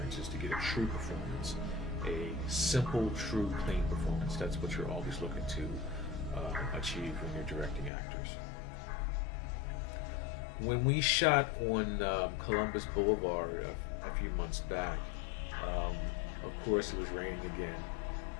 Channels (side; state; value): right; drops out; at 7.9 s